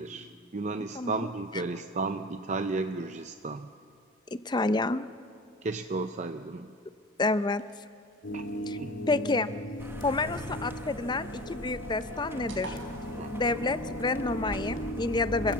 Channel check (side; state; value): both; normal; correlation 0.36